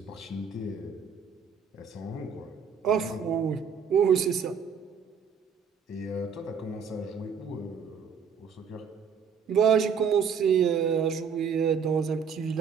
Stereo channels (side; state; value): left; quieter; 6.5 dB